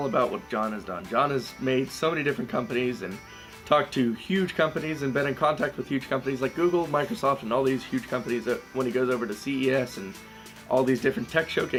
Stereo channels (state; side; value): identical; both; correlation 1.00